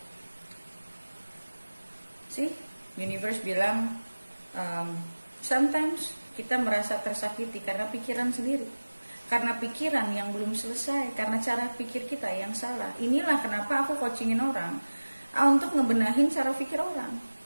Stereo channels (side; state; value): both; inverted; correlation -1.00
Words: Universe bilang sometimes kita merasa tersakiti karena pikiran sendiri, karena pikiran yang belum selesai, karena cara pikir kita yang salah. Inilah kenapa aku coachingin orang untuk ngebenahin cara pikir orang.